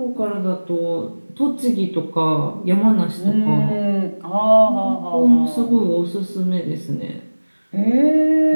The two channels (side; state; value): both; inverted; correlation -1.00